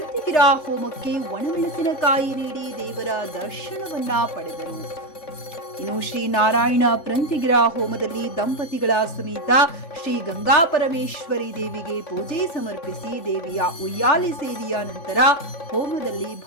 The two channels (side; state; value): right; late; 3.6 ms